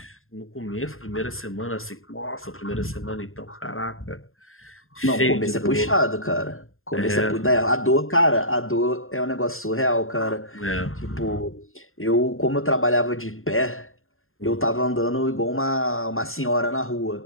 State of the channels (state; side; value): late; right; 0.61 ms